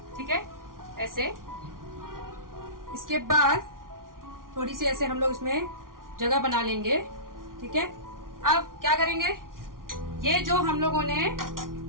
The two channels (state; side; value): late; left; 0.91 ms